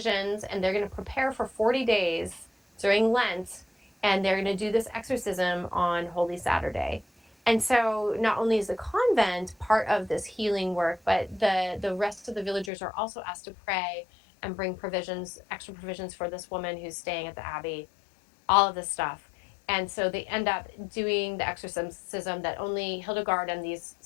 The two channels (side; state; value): right; drops out; at 12.7 s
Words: and they're going to prepare for 40 days during Lent, and they're going to do this exorcism on Holy Saturday. And so not only is the convent part of this healing work, but the rest of the villagers are also asked to pray and bring provisions, extra provisions for this woman who's staying at the abbey, all of this stuff. And so they end up doing the exorcism that only Hildegard and these